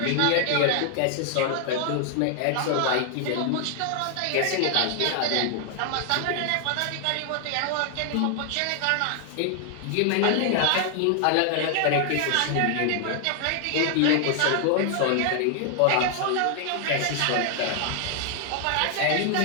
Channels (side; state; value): both; different; correlation 0.00